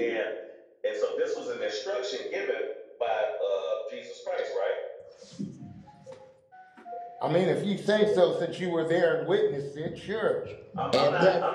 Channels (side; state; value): both; identical; correlation 1.00